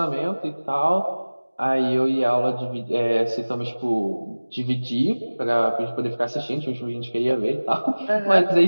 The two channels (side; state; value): both; inverted; correlation -1.00